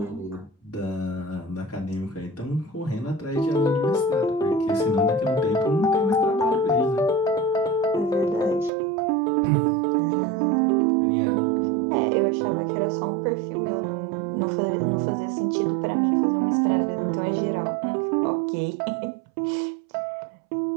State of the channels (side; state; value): left; drops out; at 8.7 s